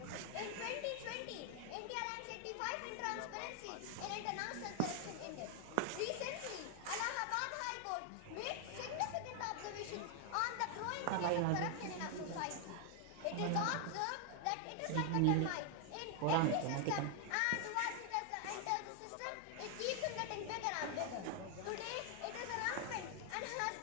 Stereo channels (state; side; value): different; both; correlation 0.00